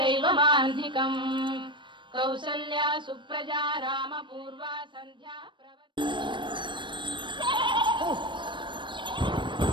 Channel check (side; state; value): left; late; 0.23 ms